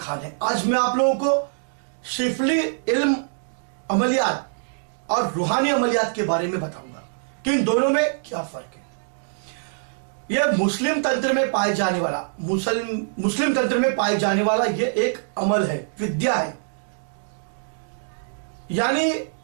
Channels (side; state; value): left; silent; digital silence